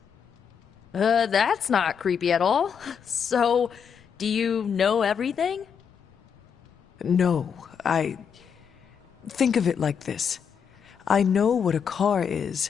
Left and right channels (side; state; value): right; quieter; 7.1 dB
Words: That's not creepy at all. So, do you know everything? No, think of it like this. I know what a car is,